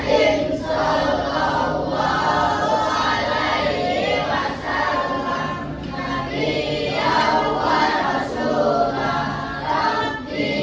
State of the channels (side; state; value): both; identical; correlation 1.00